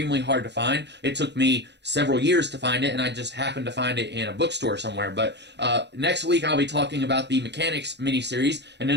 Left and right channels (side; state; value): left; late; 0.50 ms